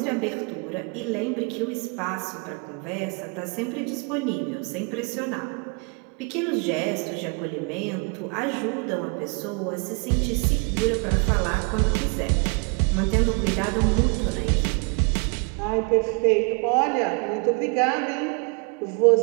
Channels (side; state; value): left; quieter; 32.9 dB